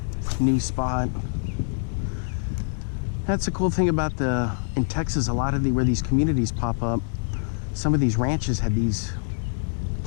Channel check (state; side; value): silent; right; digital silence